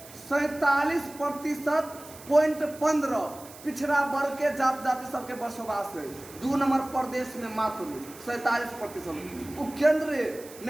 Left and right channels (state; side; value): noise; right; hiss, 18 dB below the sound